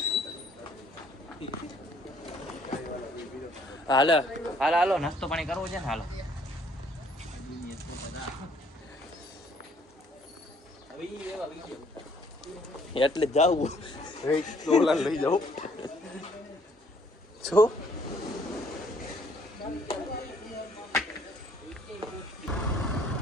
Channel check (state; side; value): normal; both; correlation 0.62